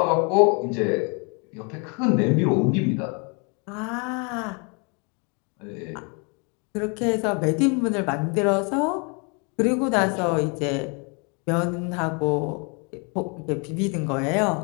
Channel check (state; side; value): quieter; right; 34.0 dB